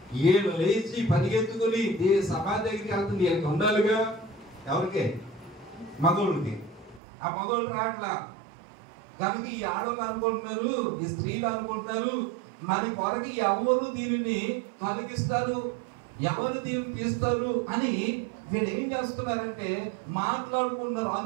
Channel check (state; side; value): drops out; left; at 7.0 s